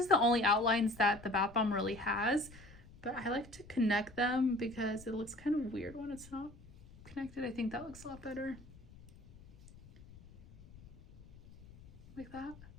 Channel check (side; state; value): left; noise; rumble, 20 dB below the sound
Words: the only outlines that the bath bomb really has, but I like to connect them because it looks kind of weird when it's not connected. I think that looks a lot better. Like that.